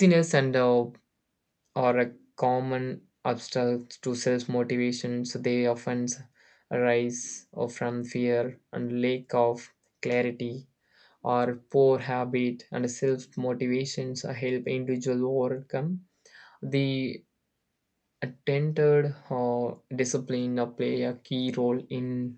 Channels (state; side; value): identical; both; correlation 1.00